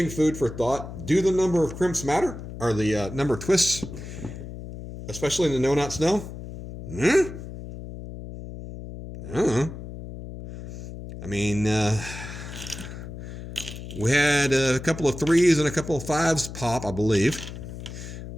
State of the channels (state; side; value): noise; left; hum, 11 dB below the sound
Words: food for thought. Do the number of crimps matter? Or the number of twists, especially in the no-knot snell? I mean, we had a couple of 3s and a couple of 5s pop, I believe.